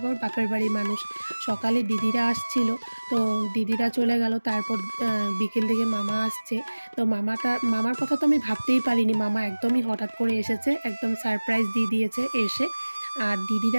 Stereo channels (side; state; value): both; inverted; correlation -1.00